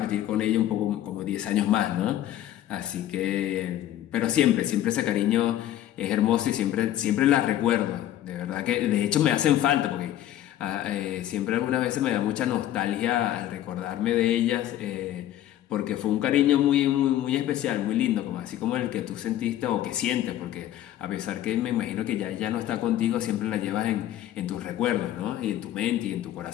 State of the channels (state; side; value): quieter; right; 12.6 dB